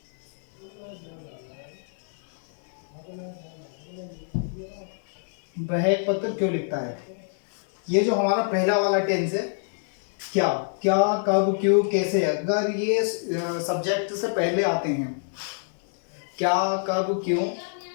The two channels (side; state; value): right; silent; digital silence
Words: वह एक पत्र क्यों लिखता है। ये जो हमारा पहला वाला टेंस है, क्या, क्या, कब, क्यों, कैसे, अगर ये सब्जेक्ट से पहले आते हैं, क्या, कब, क्यों,